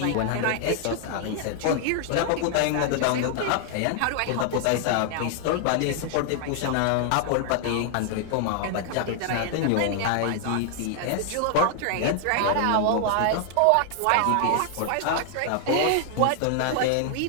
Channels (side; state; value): both; different; correlation 0.00